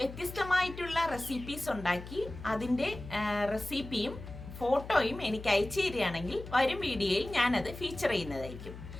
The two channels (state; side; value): noise; left; hum, 12 dB below the sound